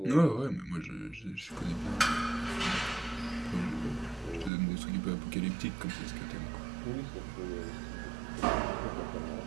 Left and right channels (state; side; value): drops out; left; at 4.5 s